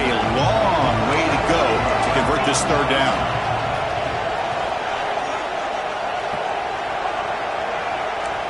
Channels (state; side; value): identical; both; correlation 1.00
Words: long way to go to convert this third down.